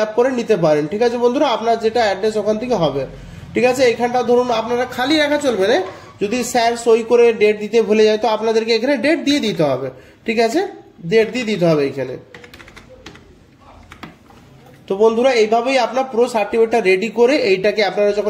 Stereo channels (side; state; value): both; identical; correlation 1.00